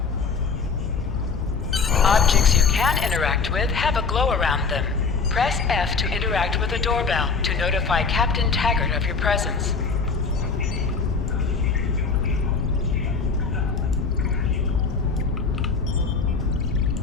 Objects you can interact with have a glow around them. Press F to interact with a doorbell to notify Captain Taggart of your presence.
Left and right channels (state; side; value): quieter; right; 4.9 dB